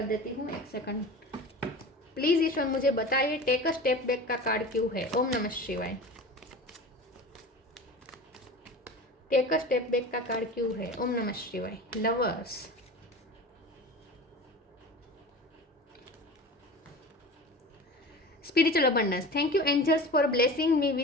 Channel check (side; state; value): both; normal; correlation 0.34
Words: देती हूँ, एक सेकंड प्लीज ईश्वर मुझे बताइए टेक अ स्टेप बैक का कार्ड क्यों है। ओम नमः शिवाय। टेक अ स्टेप बैक का कार्ड क्यों है? ओम नमः शिवाय। Lovers, spiritual abundance, thank you angels for blessing me